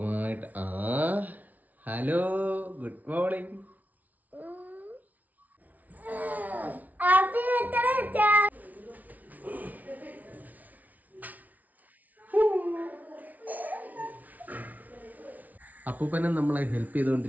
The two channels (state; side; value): late; left; 0.075 ms